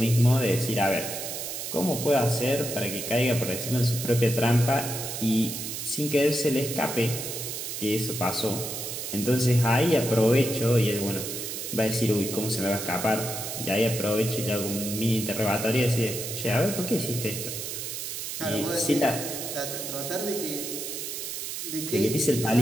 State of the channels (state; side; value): noise; right; hiss, 6 dB below the sound